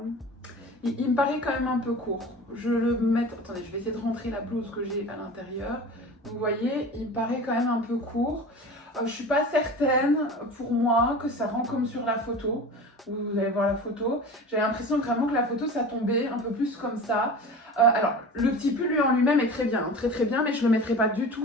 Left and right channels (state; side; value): normal; both; correlation 0.35